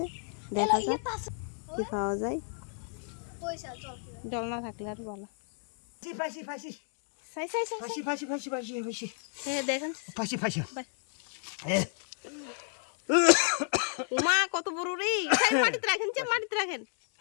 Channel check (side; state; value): right; silent; 56 dB below the other